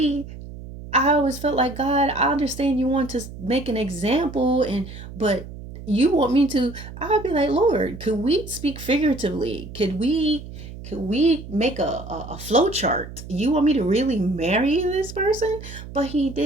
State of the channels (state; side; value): noise; right; hum, 13 dB below the sound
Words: always felt like, God, I understand you want to make an example, but you want me to, I'll be like, Lord, could we speak figuratively? Could we make a flow chart? You want me to really marry this person? But he